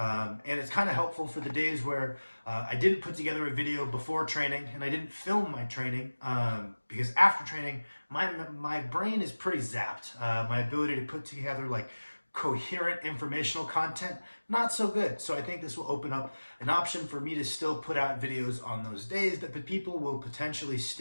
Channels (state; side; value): inverted; both; correlation -1.00